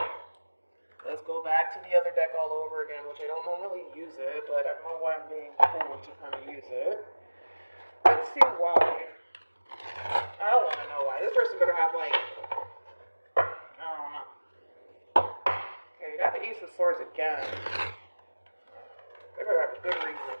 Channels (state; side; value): inverted; both; correlation -1.00